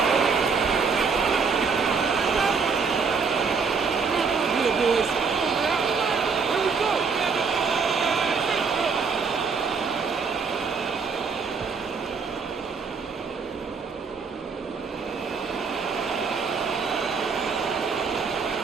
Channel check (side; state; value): left; quieter; 5.3 dB